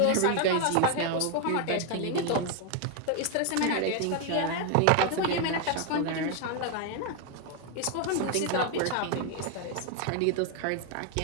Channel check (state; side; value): different; both; correlation 0.01